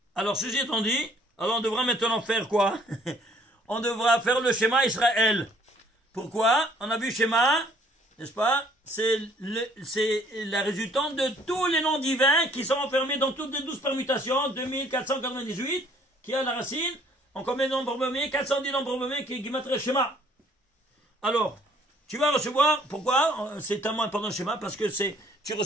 Alors, ceci étant dit, alors on devra maintenant faire quoi? On devra faire le schéma Israël. Pourquoi? On a vu schéma, n'est-ce pas? C'est la résultante de tous les noms divins qui sont enfermés dans toutes les 12 permutations, 2498, qui a la racine, en combien de nombres nommés? 410 nombres nommés qui est Gematria Schéma. Alors, tu vas recevoir, pourquoi? C'est tellement important le schéma, parce que tu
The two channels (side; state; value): both; normal; correlation 0.60